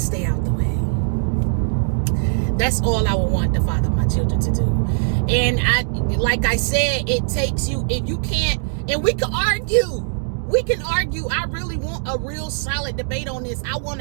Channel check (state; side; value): silent; left; digital silence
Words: stay out the way. That's all I would want the father of my children to do. And like I said, it takes you, if you can't, and we can argue. I really want a real solid debate on this. I want